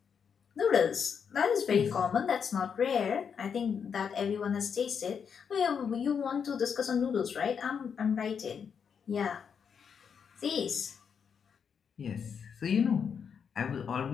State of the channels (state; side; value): quieter; right; 6.9 dB